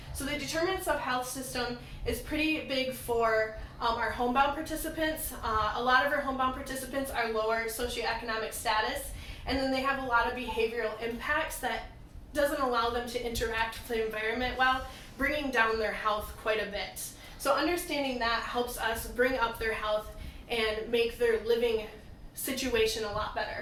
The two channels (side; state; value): both; identical; correlation 1.00